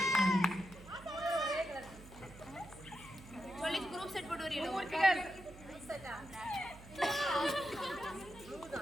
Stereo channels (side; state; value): right; noise; hum, 17 dB below the sound